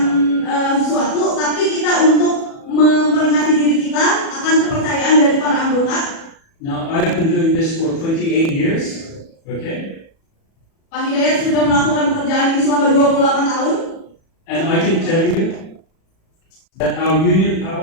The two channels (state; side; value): late; right; 37 ms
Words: sesuatu, tapi kita untuk memperingati diri kita akan kepercayaan dari para anggota. Now, I've been doing this for 28 years, okay? Pak Hidayat sudah melakukan pekerjaan ini selama 28 tahun. And I can tell you that our union